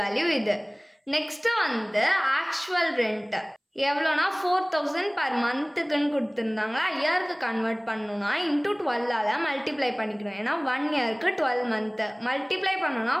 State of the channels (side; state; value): both; identical; correlation 1.00